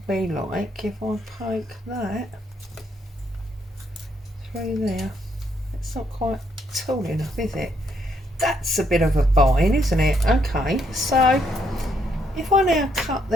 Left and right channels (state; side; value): normal; both; correlation 0.73